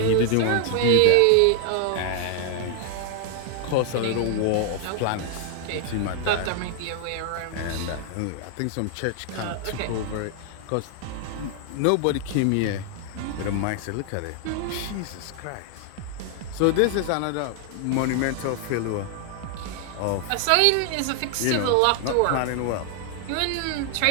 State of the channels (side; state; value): both; different; correlation 0.00